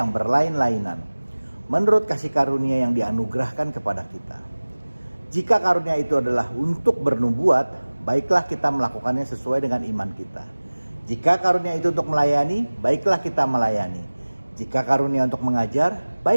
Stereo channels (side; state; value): both; inverted; correlation -1.00